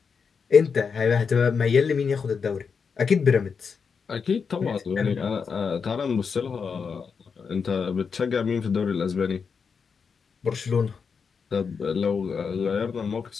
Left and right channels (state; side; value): quieter; right; 5.8 dB